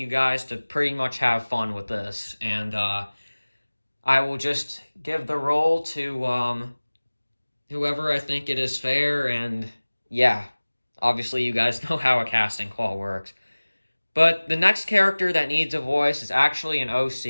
guys to pretty much have fun with this. And I will just give the role to whoever I think it is fair. And yeah, obviously you guys know how a casting call works. But the next character that needs a voice is actually an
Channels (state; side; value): inverted; both; correlation -1.00